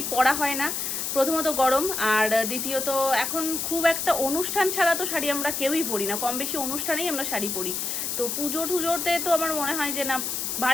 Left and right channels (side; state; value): left; noise; hiss, 2 dB below the sound